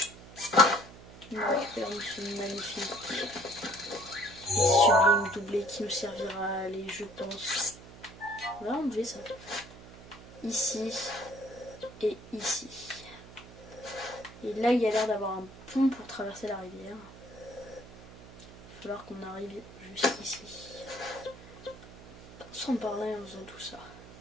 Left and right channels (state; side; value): noise; right; hum, 18 dB below the sound